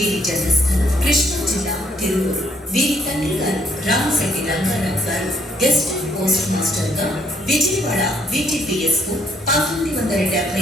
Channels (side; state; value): both; normal; correlation 0.68